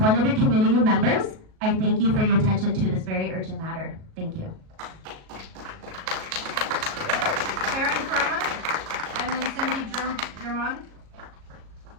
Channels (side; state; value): left; late; 37 ms